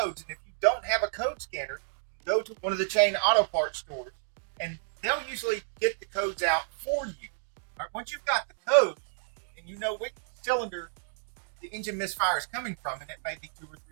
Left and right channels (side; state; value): left; silent; digital silence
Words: and if you don't have a code scanner, go to one of the chain auto parts stores, and they'll usually get the codes out for you. All right, once you've got the code, and you know which cylinder the engine misfire is coming from, and it may be 2 or